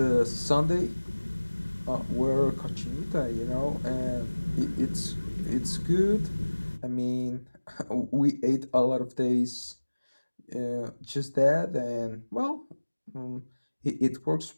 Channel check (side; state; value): both; inverted; correlation -1.00